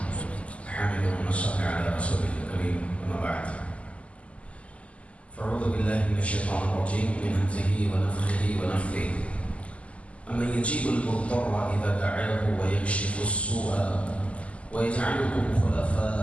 حمد ونصلي على رسوله الكريم، أما بعد. فأعوذ بالله من الشيطان الرجيم من همزه ونفخه ونفثه. أمن يجيب المضطر إذا دعاه ويكشف السوء ويجعلكم خلفاء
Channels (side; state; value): right; late; 0.063 ms